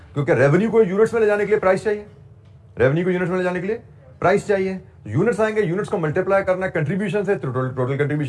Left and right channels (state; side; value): identical; both; correlation 1.00